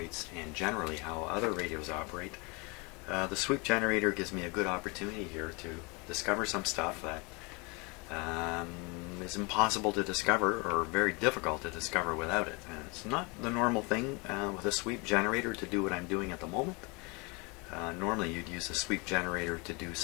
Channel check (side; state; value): right; quieter; 29.0 dB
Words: and generally how other radios operate. The sweep generator gives me a good opportunity here to discover some stuff that is impossible to discover or very difficult to discover without it. It's not the normal thing with a sweep generator to do what I'm doing at the moment. Normally you'd use a sweep generator to do